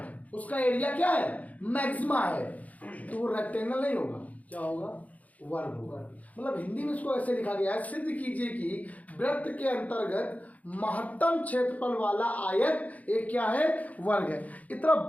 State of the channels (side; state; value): right; late; 0.073 ms